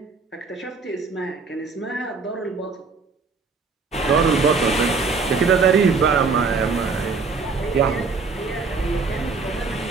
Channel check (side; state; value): left; quieter; 4.6 dB